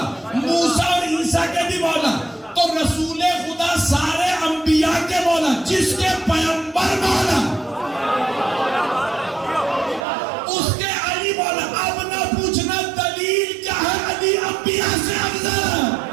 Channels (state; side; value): drops out; left; at 10.1 s